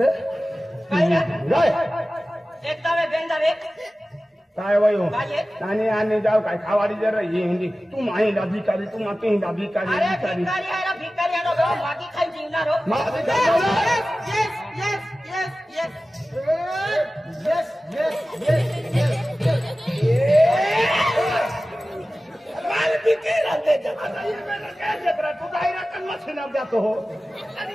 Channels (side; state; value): both; normal; correlation 0.96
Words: एकदा वे बेंदा वे काय वयो आने जाओ काय खावाडी जरा ये हिंदी तुम आई दा भिकारी तुम आते ही दा भिकारी अरे भिकारी है ना बाकी खाई जीवना रो माल बिके रहते जमाना ये मैंने कैसे करा तू दायरा कन मछना जातो हो अरे